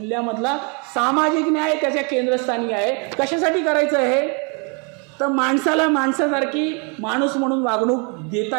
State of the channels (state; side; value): quieter; left; 34.7 dB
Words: सामाजिक न्याय त्याच्या केंद्रस्थानी आहे. कशासाठी करायचं आहे? तर माणसाला माणसासारखी माणूस म्हणून वागणूक